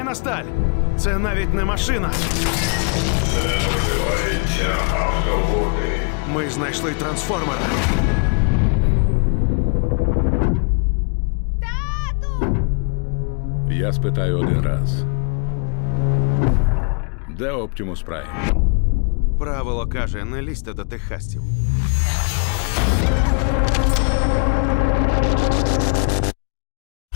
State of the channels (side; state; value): right; quieter; 37.6 dB